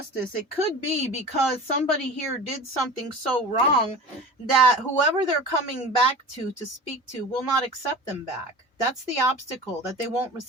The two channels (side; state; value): both; normal; correlation 0.36